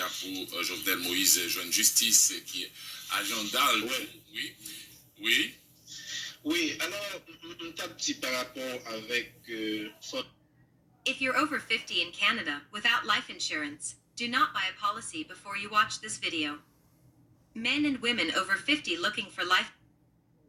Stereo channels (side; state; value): both; identical; correlation 1.00